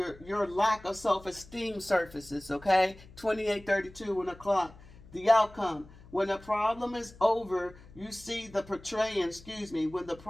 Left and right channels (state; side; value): noise; left; hum, 21 dB below the sound